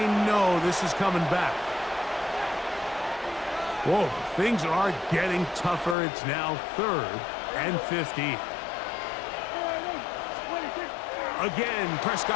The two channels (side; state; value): right; drops out; at 6.0 s